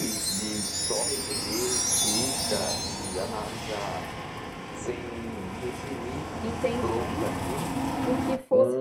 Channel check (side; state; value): both; identical; correlation 1.00